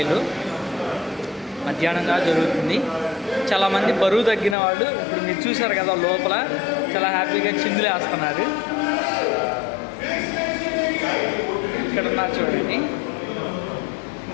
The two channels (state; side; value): drops out; right; at 4.5 s